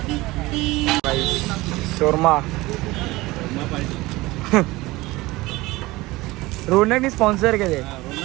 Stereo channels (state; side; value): quieter; left; 20.2 dB